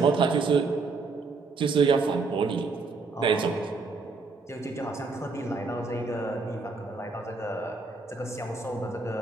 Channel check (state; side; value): quieter; left; 4.1 dB